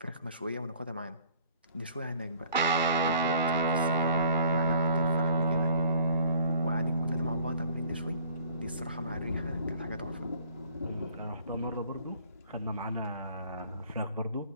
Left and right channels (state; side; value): inverted; both; correlation -0.54